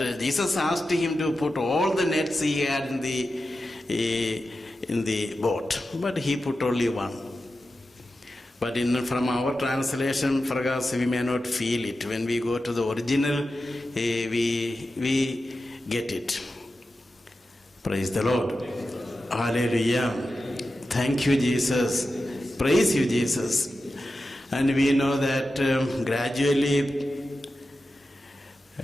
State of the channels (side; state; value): both; normal; correlation 0.92